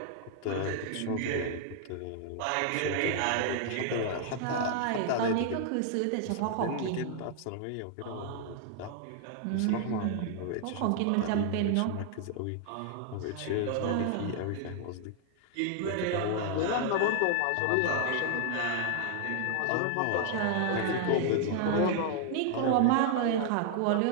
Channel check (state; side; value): different; both; correlation 0.00